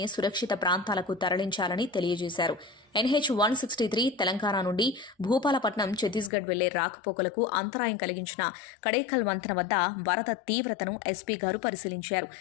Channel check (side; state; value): right; drops out; at 6.3 s